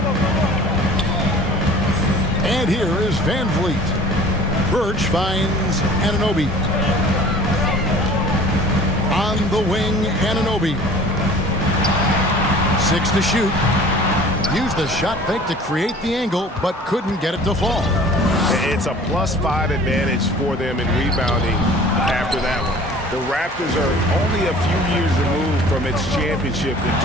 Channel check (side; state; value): both; normal; correlation 0.46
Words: And here is VanVleet. Birch finds Anunoby. On the wing, Anunoby. 6 to shoot. Used the shot fake to create the angle, but couldn't get it to fall. It's a +5 advantage for them in rebounding after that one. The Raptors are only a few years removed from its championship in